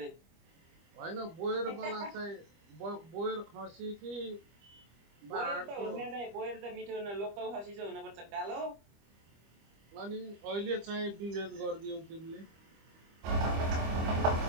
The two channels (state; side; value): late; left; 25 ms